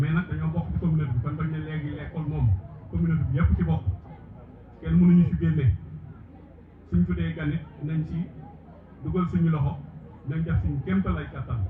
nag dañoo bokk ci communauté bi kon bañ ne léegi l'école moom communauté bi yëpp ci bokk kenn mënuñu ci génne suñ fi dee ganit nañ ci dugal suñu loxo nañ def suñu kéemtalaay kattan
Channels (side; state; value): both; identical; correlation 1.00